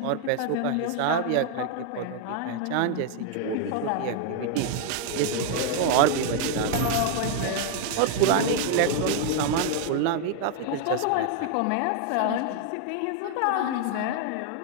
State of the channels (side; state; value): both; different; correlation 0.00